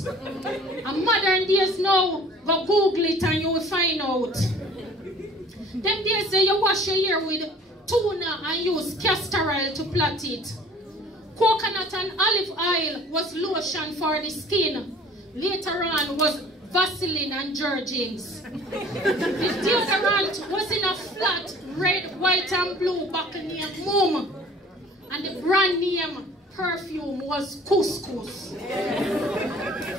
And modern days now, go Google it and you will find out. Them days there, you wash your hair with tuna and use castor oil to plait it. Coconut and olive oil was lotion for the skin. Later on was Vaseline and Jergens. The deodorant was in a flat red, white and blue bottle named Mum. And the brand name perfume was Couscous.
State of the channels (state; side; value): normal; both; correlation 0.50